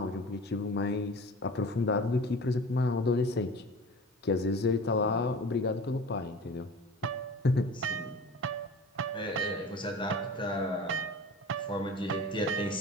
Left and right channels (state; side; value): normal; both; correlation 0.38